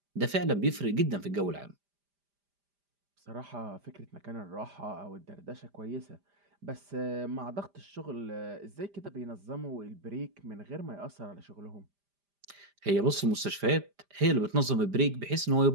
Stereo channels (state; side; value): late; left; 5.0 ms